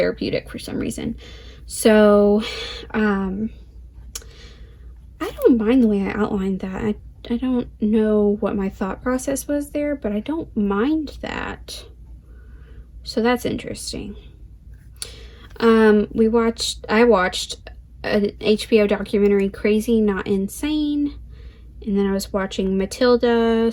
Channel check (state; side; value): identical; both; correlation 1.00